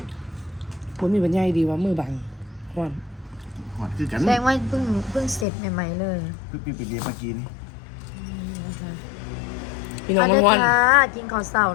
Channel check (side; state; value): right; drops out; at 5.5 s